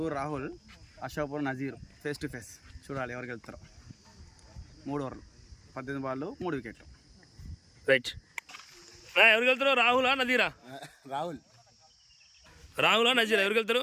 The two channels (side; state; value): both; identical; correlation 1.00